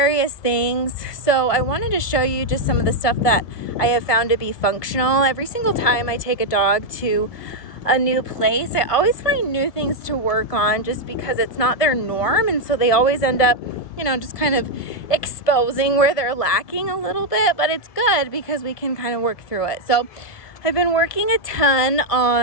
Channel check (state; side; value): late; right; 1.7 ms